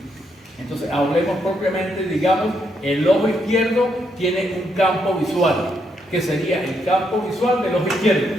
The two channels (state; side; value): normal; both; correlation 0.77